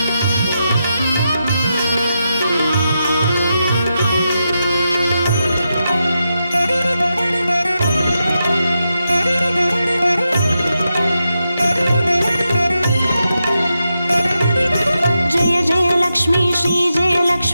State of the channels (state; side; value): inverted; both; correlation -0.87